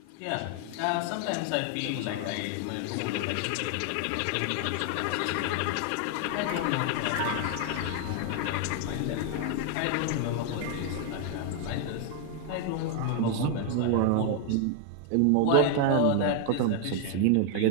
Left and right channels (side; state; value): both; different; correlation 0.00